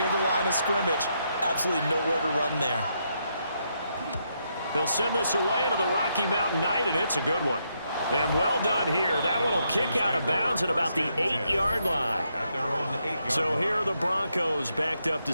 the line of scrimmage. Absolutely nowhere to run there. He'll send this away into the Rocky Mountain Night, and it's a good one. And well done here. That one will kick out of bounds at about the 8-yard line. So here are the Broncos backed up to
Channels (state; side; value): inverted; both; correlation -0.78